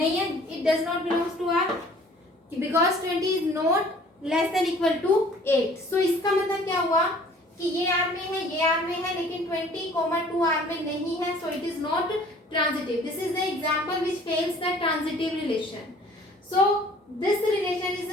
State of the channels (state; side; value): normal; both; correlation 0.53